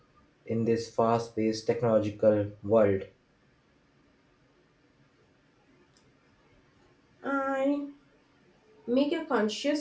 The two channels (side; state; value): both; identical; correlation 1.00